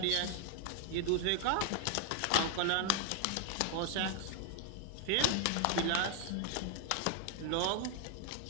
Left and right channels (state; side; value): different; both; correlation 0.00